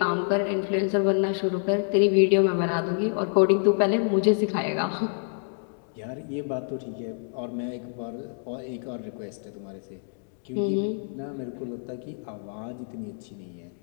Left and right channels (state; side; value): silent; right; 60 dB below the other